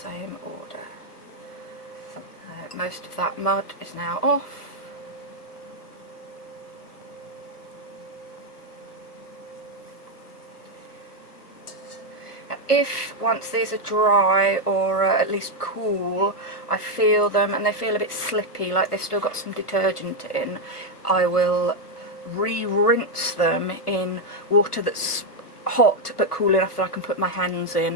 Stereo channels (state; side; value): late; right; 1.3 ms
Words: order. Most of that mud is now off. If once these are dry or at least cool, I feel them and they feel a bit slippy, like they've still got some detergent in, I will re-rinse them in water that's hot but cool enough that I can put my hands